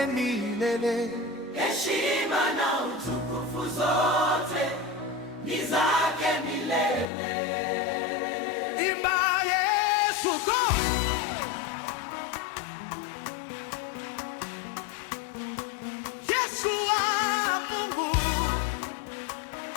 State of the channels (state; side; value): drops out; right; at 7.1 s